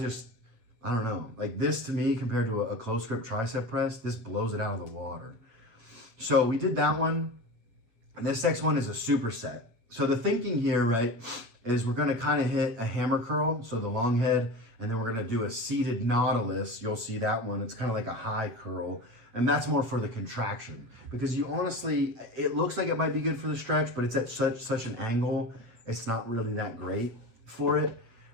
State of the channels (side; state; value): left; late; 8.6 ms